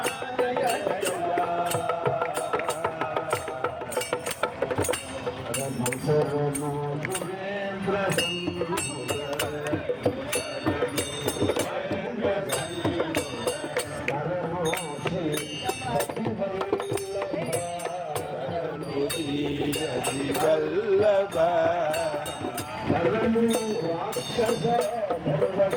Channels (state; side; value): identical; both; correlation 1.00